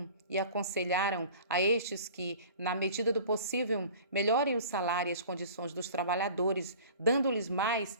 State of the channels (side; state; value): both; inverted; correlation -0.44